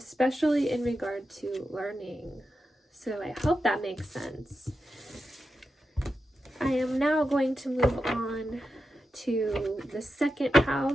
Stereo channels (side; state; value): both; normal; correlation 0.89